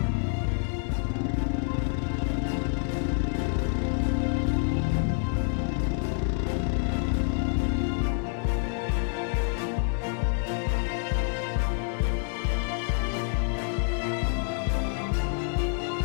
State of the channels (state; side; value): silent; right; 56 dB below the other